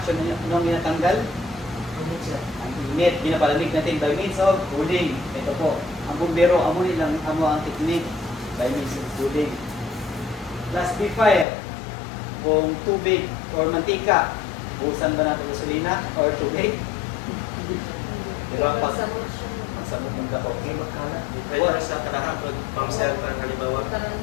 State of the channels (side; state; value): right; drops out; at 11.5 s